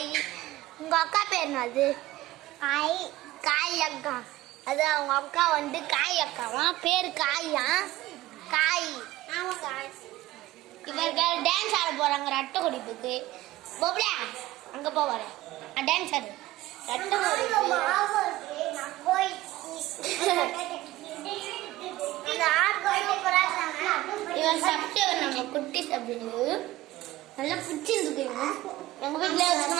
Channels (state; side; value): quieter; left; 17.0 dB